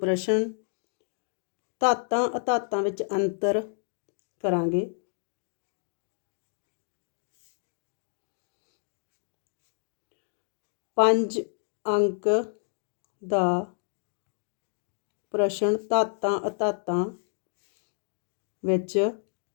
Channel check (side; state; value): right; silent; digital silence